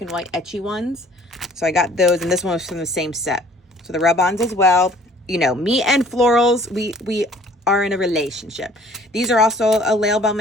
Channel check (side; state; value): both; normal; correlation 0.55